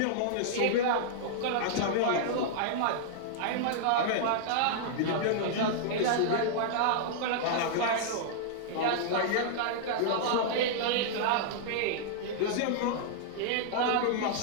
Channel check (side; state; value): both; different; correlation -0.01